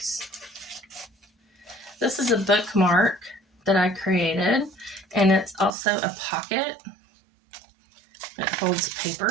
This is a bookmark that I created, and it's also a pocket. It holds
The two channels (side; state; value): left; drops out; at 5.7 s